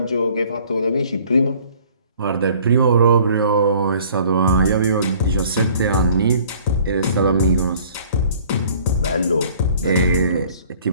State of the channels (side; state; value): both; inverted; correlation -0.53